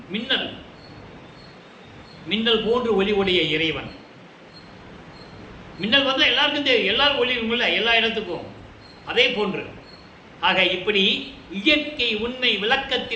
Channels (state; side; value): identical; both; correlation 1.00